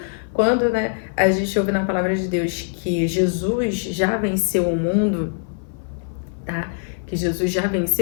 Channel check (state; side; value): silent; right; 59 dB below the other